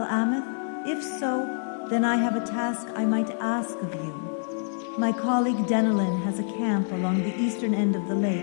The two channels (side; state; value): right; silent; digital silence